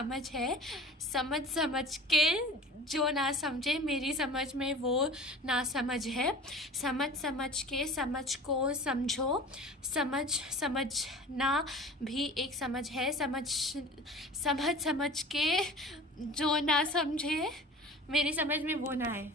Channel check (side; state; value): both; normal; correlation 0.40